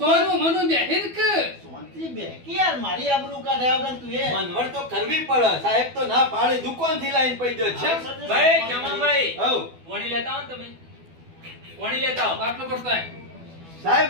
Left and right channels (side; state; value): left; late; 12 ms